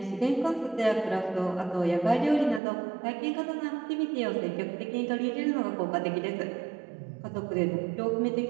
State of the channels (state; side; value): drops out; left; at 2.6 s